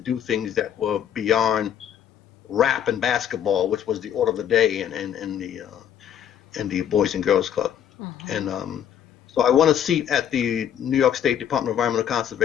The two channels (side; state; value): right; quieter; 9.5 dB